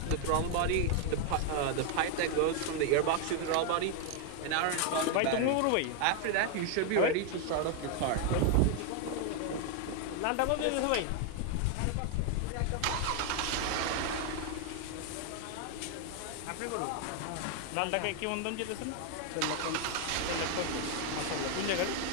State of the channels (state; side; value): different; both; correlation 0.00